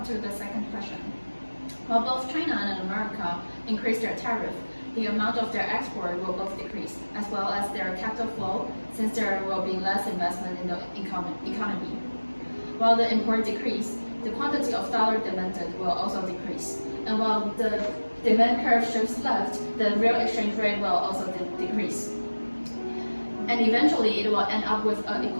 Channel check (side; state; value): both; inverted; correlation -1.00